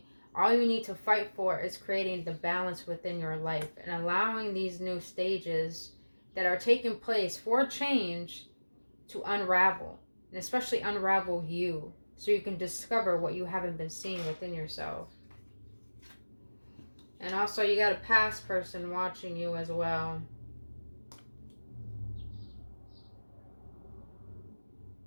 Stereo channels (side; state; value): both; inverted; correlation -1.00